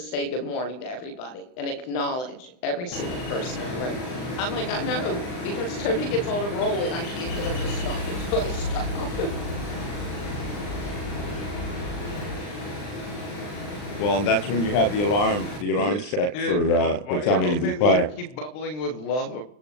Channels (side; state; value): right; late; 39 ms